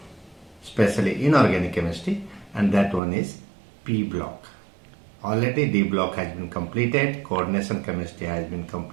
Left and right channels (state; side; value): drops out; left; at 3.0 s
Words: especially inorganic chemistry, and that one is P block. Already D block has been completed, coordination chemistry has been